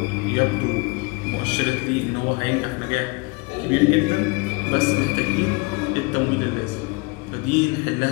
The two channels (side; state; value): right; quieter; 27.6 dB